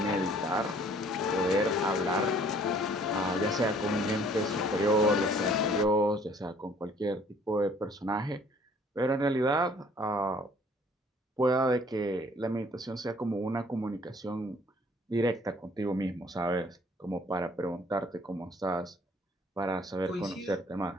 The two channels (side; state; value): both; normal; correlation 0.58